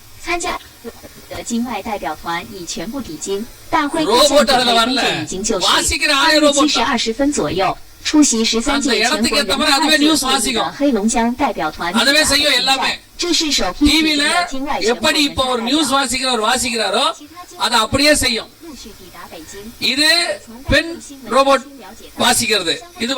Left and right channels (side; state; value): both; identical; correlation 1.00